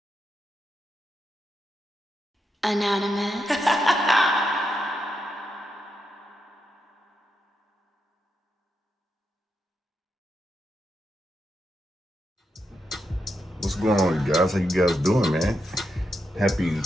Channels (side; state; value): both; normal; correlation 0.84